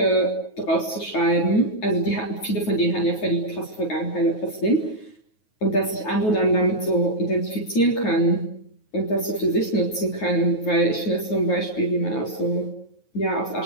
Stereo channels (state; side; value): late; right; 9.4 ms